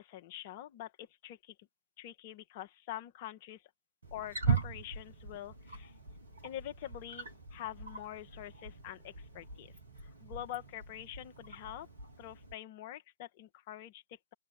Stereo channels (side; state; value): both; inverted; correlation -0.44